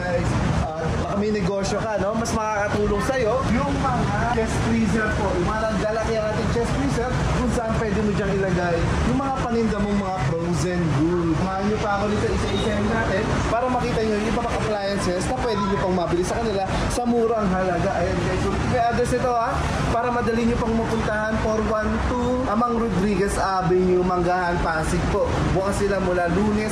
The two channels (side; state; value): both; identical; correlation 1.00